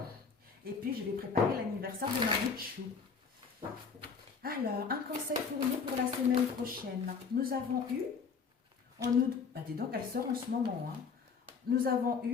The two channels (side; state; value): right; quieter; 5.5 dB